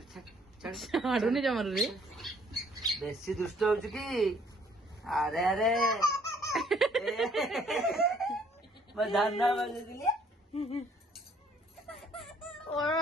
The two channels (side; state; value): both; normal; correlation 0.62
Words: आडुनी जमर रे बेसी दुष्ट होचु की अरे अरे मैं धन्ना बजे दिली